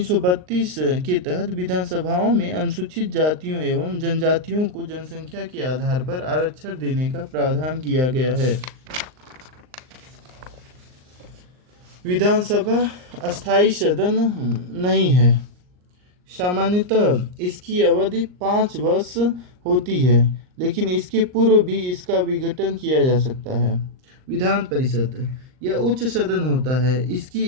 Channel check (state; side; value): late; left; 39 ms